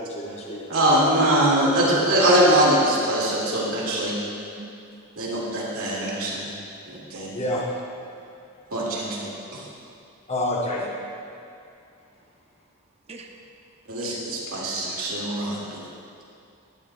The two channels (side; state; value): both; normal; correlation 0.09